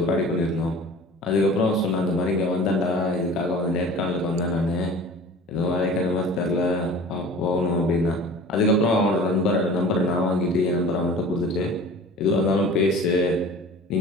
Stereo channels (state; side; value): normal; both; correlation 0.42